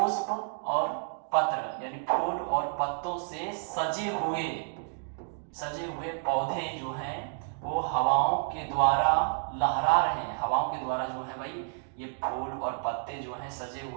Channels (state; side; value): silent; left; digital silence